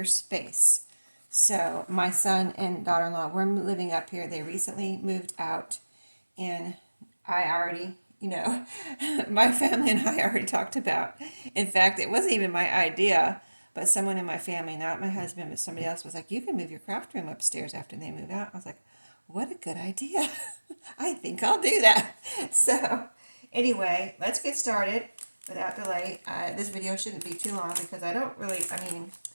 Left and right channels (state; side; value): inverted; both; correlation -1.00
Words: space. So my son and daughter-in-law were living up here. They recently moved out, and I already, my family and I already talked about. In fact, it wasn't even my idea, but someone in my family, not my husband, but somebody else, was like, you can move your craft room upstairs after they move out. I was like, what a good idea. I think I'll do that. So anyway, let's get started without delay. This video shouldn't be too long because